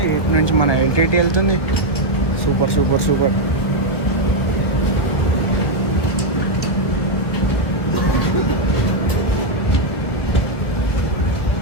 ఇటు నుంచి మన ఎల్టీటీ వెళ్తుంది. Super super super.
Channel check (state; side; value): late; right; 1.7 ms